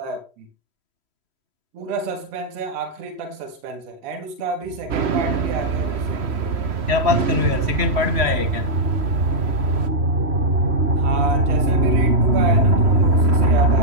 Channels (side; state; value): left; late; 3.1 ms